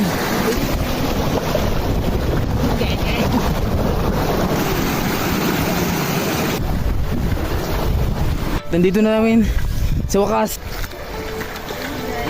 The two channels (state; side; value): identical; both; correlation 1.00